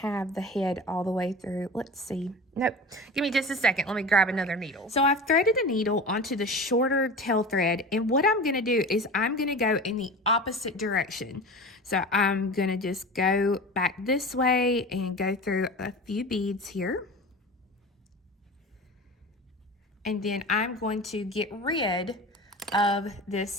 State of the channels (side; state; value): both; normal; correlation 0.33